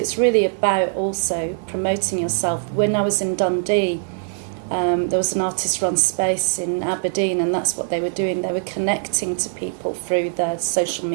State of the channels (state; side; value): silent; left; digital silence